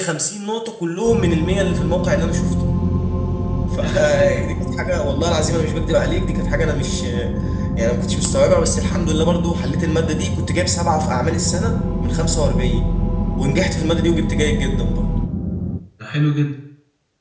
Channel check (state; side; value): identical; both; correlation 1.00